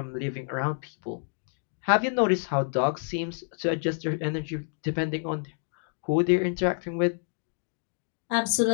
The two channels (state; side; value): silent; right; 59 dB below the other